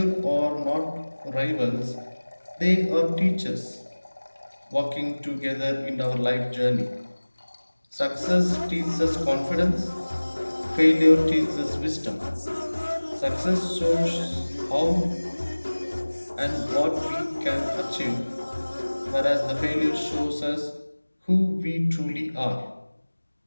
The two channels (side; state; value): both; inverted; correlation -1.00